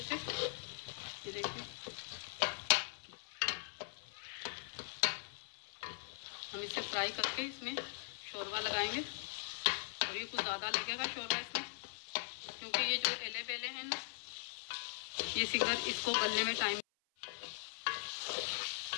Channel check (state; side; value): silent; right; 51 dB below the other